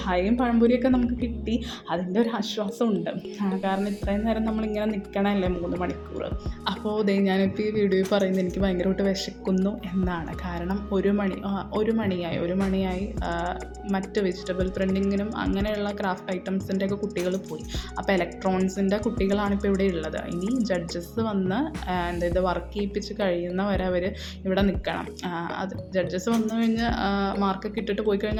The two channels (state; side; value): identical; both; correlation 1.00